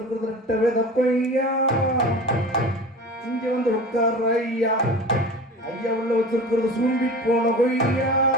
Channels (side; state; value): both; normal; correlation 0.35